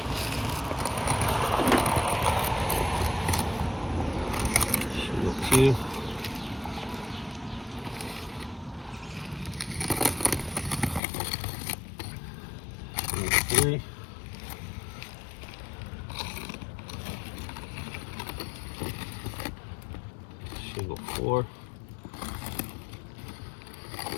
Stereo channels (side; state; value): right; drops out; at 11.0 s